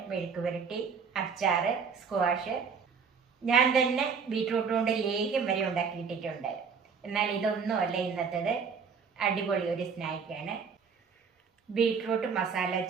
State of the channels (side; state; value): left; quieter; 5.9 dB